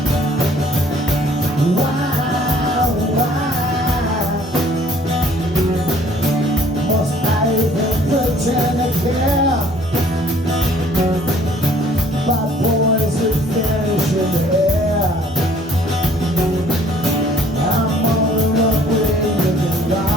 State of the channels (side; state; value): both; normal; correlation 0.57